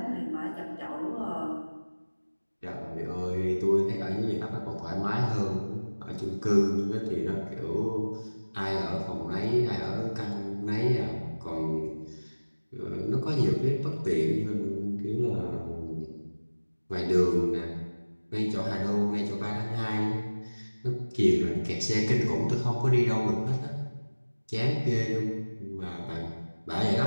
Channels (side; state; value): both; inverted; correlation -1.00